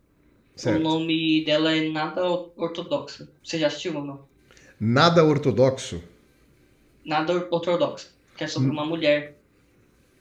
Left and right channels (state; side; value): identical; both; correlation 1.00